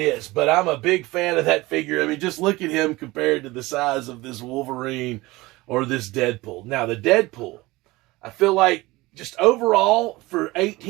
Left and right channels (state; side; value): quieter; left; 20.7 dB